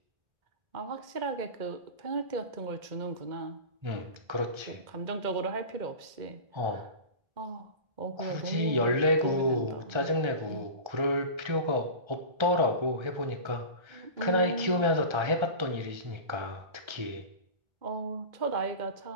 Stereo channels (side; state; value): left; late; 1.3 ms